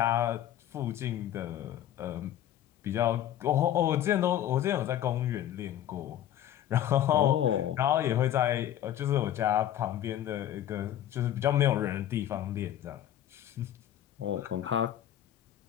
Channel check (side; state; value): right; quieter; 11.6 dB